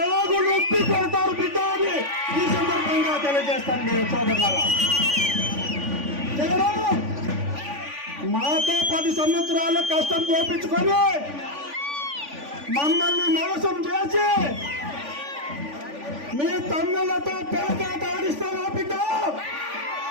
ఆగు నొప్పి కొడతారు బిడ్డ అని ఈ సందర్భంగా తెలియజేస్తాను నేను సోదరులారా. మాతో 10 సంవత్సరాల కష్టం చూపించుకొని మమ్మల్ని మోసం చేసి మీ తమ్ములతో పేకాట ఆడిస్తావా బిడ్డ?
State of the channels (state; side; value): late; left; 3.5 ms